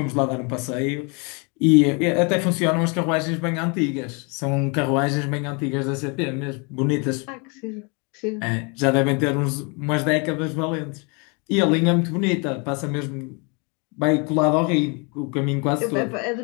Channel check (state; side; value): quieter; right; 32.7 dB